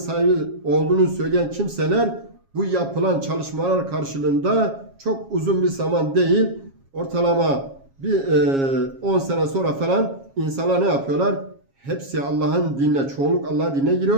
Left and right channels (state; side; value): late; left; 7.3 ms